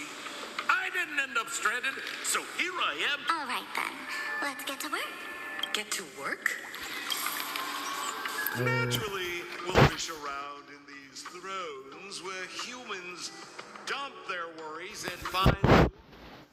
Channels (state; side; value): identical; both; correlation 1.00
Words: I didn't end up stranded, so here I am. All right, then. Let's get to work. Get to work? Naturally, we'll fish around in these thrones where humans dump their worries and find...